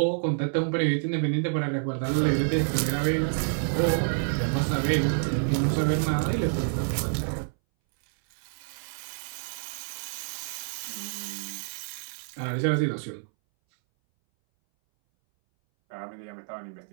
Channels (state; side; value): silent; left; 59 dB below the other